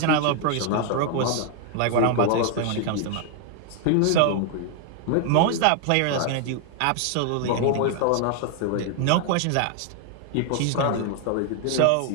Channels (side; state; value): both; different; correlation 0.00